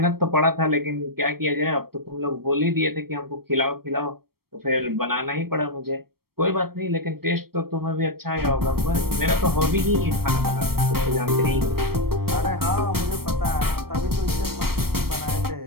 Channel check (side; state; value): left; late; 0.94 ms